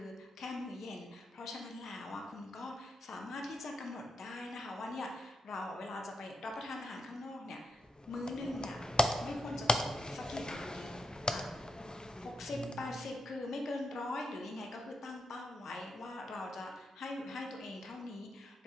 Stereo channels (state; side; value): normal; both; correlation 0.82